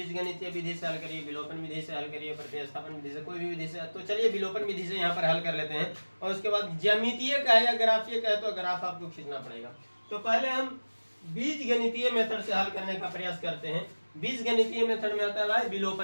विधि से हल करिए, विलोपन विधि से हल करिए, प्रतिस्थापन विधि से, कोई भी विधि से। तो चलिए विलोपन विधि से यहाँ पर हल कर लेते हैं, और उसके बाद ज्यामितीय का है या ग्राफीय का है तो ग्राफ आपको खींचना पड़ेगा। तो पहले हम बीजगणितीय मेथड से हल करने का प्रयास करते हैं। बीजगणितीय मेथड में आता है भाई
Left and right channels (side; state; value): both; inverted; correlation -1.00